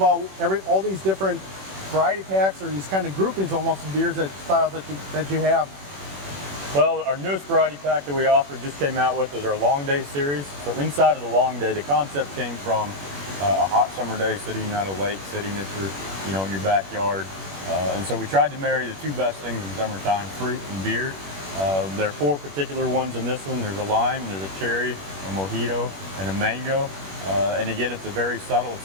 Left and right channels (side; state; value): left; late; 21 ms